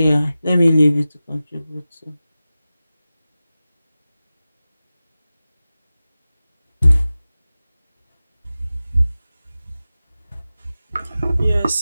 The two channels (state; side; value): inverted; both; correlation -0.95